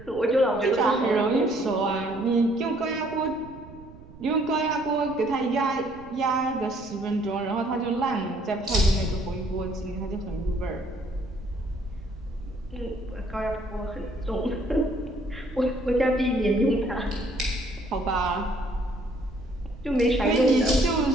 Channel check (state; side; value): noise; right; rumble, 19 dB below the sound